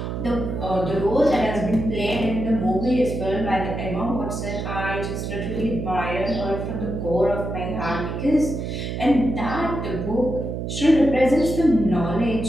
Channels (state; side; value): noise; right; hum, 4 dB below the sound